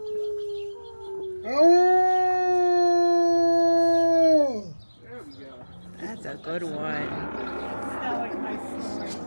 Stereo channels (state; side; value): inverted; both; correlation -1.00